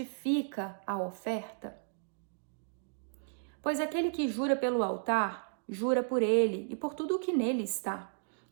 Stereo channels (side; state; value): left; silent; digital silence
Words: a oferta? Pois aquele que jura pelo altar, jura por ele e por tudo o que nele está.